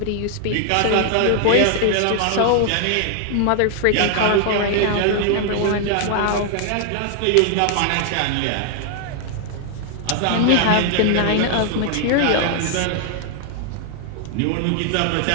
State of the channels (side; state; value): both; different; correlation 0.00